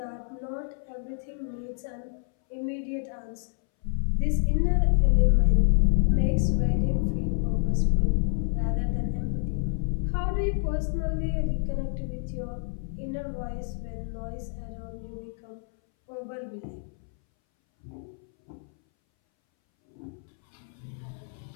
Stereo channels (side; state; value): right; silent; 59 dB below the other